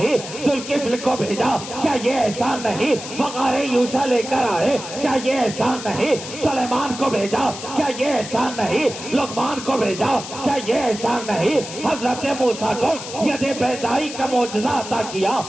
ذوالکفل کو بھیجا، کیا یہ احسان نہیں؟ وقار یوشع لے کر آئے، کیا یہ احسان نہیں؟ سلیمان کو بھیجا، کیا یہ احسان نہیں؟ لقمان کو بھیجا، کیا یہ احسان نہیں؟ حضرت موسیٰ کو ید بیضائی کا معجزہ عطا کیا،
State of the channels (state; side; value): noise; left; hiss, 10 dB below the sound